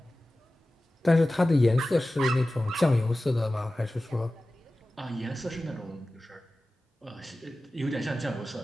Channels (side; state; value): both; normal; correlation 0.96